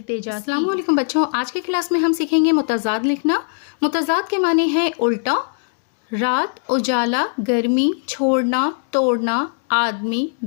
की। अस्सलाम वालेकुम बच्चों, आज की क्लास में हम सीखेंगे मुतज़ाद लिखना। मुतज़ाद के माने हैं उल्टा। रात, उजाला, गर्मी, छोड़ना, तोड़ना, आदमी,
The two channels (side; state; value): right; silent; digital silence